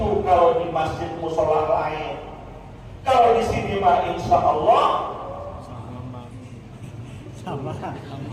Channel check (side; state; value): both; identical; correlation 1.00